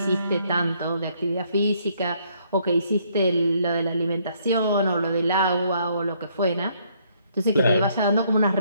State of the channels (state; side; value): inverted; both; correlation -0.68